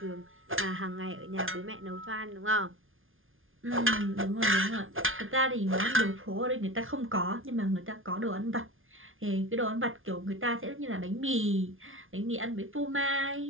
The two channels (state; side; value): late; left; 0.59 ms